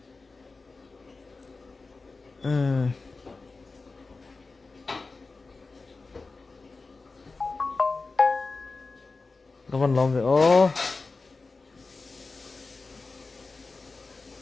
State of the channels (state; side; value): quieter; right; 3.9 dB